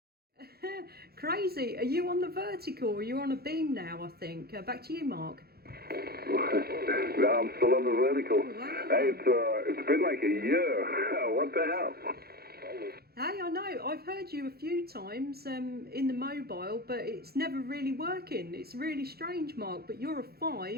Crazy. Are you on the vertical? Are you on a beam now, I think? Back to you, Mark. No, I'm still on the vertical. Wow. Hey, it's been like a year. What the hell? Hey, I know. I've heard you a few times in the mobile, but it's never really working. It's really strange, Mark. But you're a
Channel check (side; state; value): left; late; 0.46 ms